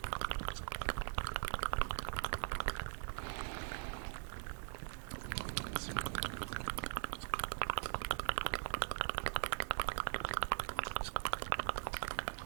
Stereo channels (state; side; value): silent; left; digital silence